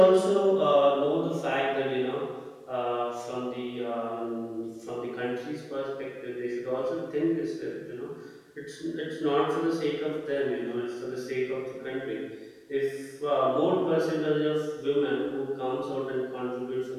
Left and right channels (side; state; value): both; identical; correlation 1.00